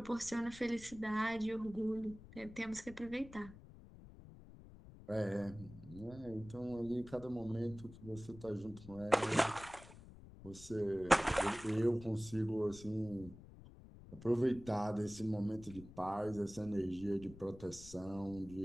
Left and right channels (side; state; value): left; noise; rumble, 17 dB below the sound